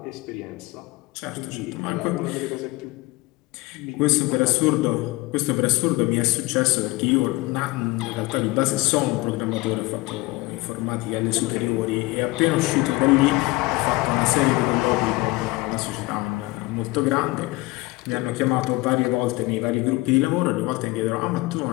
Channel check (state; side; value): quieter; right; 21.7 dB